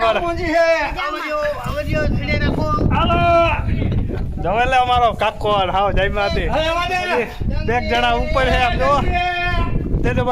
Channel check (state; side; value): identical; both; correlation 1.00